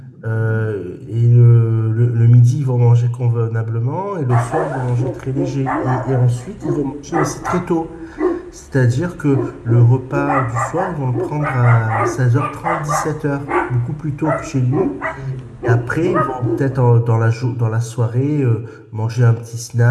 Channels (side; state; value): both; identical; correlation 1.00